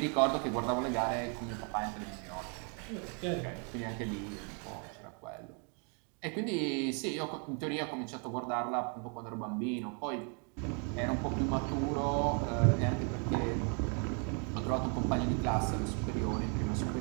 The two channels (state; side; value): quieter; left; 38.1 dB